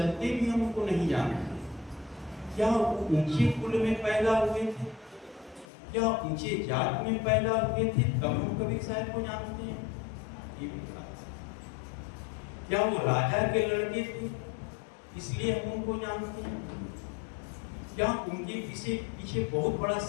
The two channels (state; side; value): drops out; right; at 5.7 s